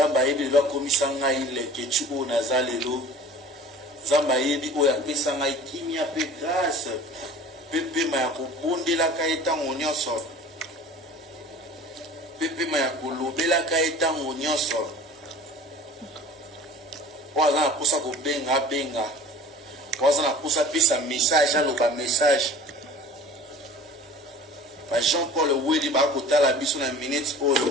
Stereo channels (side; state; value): both; normal; correlation 0.43